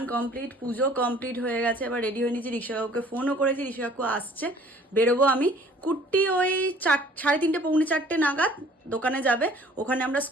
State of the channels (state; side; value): normal; both; correlation 0.54